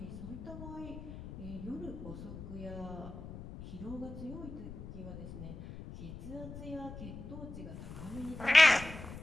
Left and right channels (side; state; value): left; noise; rumble, 11 dB below the sound